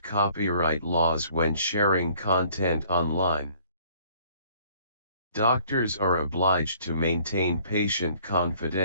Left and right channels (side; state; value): both; inverted; correlation -0.58